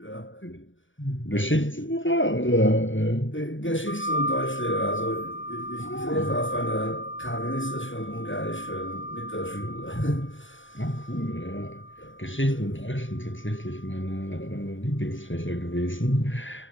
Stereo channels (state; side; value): late; right; 0.56 ms